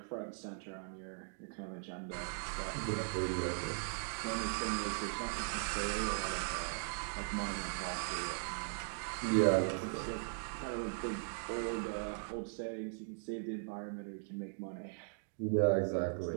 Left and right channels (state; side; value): silent; left; digital silence